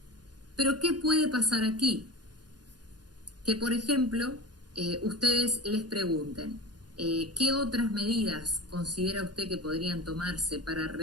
Pero ¿qué puede pasar aquí? Que, por ejemplo, ustedes les pregunten, ¿qué otras medidas considera usted que podrían tomarse para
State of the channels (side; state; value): left; late; 0.69 ms